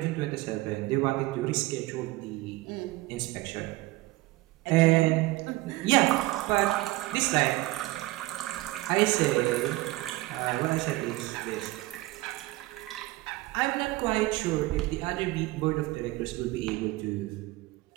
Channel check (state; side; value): quieter; left; 19.3 dB